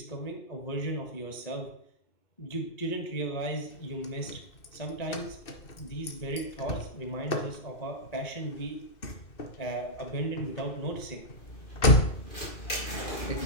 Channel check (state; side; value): late; right; 2.4 ms